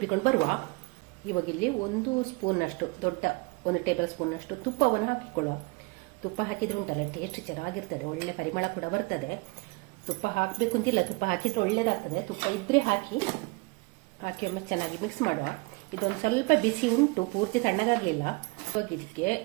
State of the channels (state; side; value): quieter; left; 26.8 dB